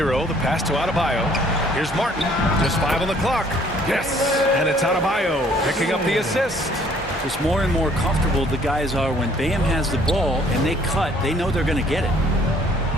the pass to Adebayo. Here's Martin. Just 5 on the clock. Yes, and it's Adebayo picking up the assist. Just more and more comfortable the guys are when Bam has the ball and they cut. They know they're going to get it.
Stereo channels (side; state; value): both; normal; correlation 0.60